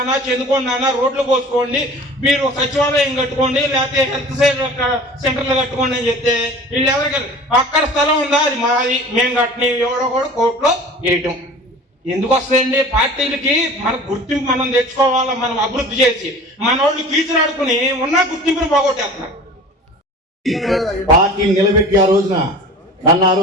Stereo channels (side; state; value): both; normal; correlation 0.41